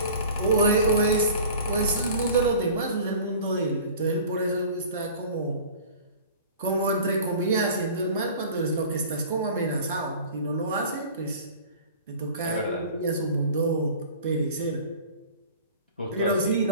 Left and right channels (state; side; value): inverted; both; correlation -0.42